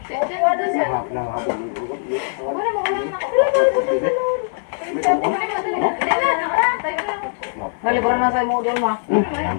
Naliburan na sa mo doon ma.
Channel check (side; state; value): right; silent; 65 dB below the other